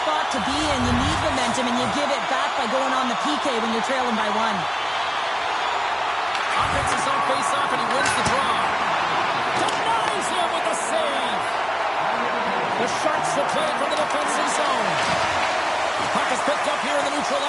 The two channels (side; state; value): both; identical; correlation 1.00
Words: to be in. You need momentum, and you give it back by going on the PK when you're trailing by one. Offense is on face-off, and he wins the draw. Denies him with a save. The Sharks will play from the defensive zone. Puck is picked up here in the neutral